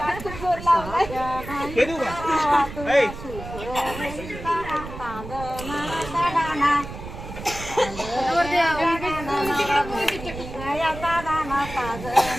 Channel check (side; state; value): right; noise; rumble, 11 dB below the sound